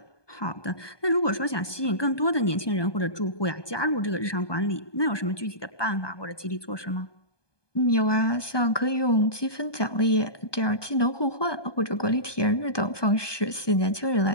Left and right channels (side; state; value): right; late; 1.2 ms